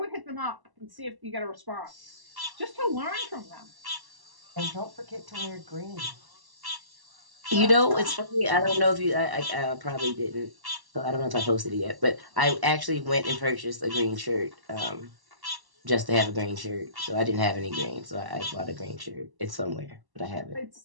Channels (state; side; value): late; left; 1.1 ms